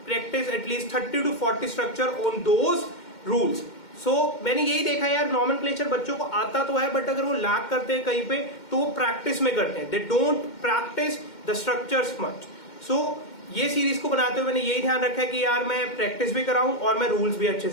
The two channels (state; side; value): late; right; 2.1 ms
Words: practice at least 30 to 40 structure on those rules. मैंने यही देखा यार, नॉमेनक्लेचर बच्चों को आता तो है बट अगर वो लैक करते हैं कहीं पे तो वो प्रैक्टिस में करते हैं. They don't practice the structures much. ये सीरीज को बनाते हुए मैंने यही ध्यान रखा है कि यार मैं प्रैक्टिस भी कराऊं और मैं रूल्स भी अच्छे